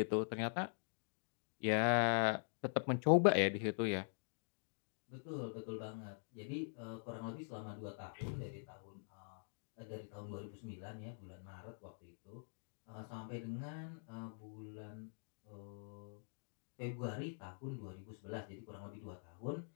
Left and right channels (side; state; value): right; silent; digital silence